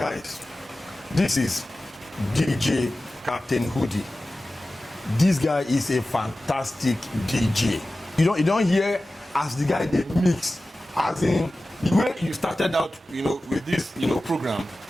this is DJ Captain Hoodie. This guy is a fantastic DJ. You don't hear as the guy they mix, as in the way you started out, with this, program,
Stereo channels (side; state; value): both; normal; correlation 0.95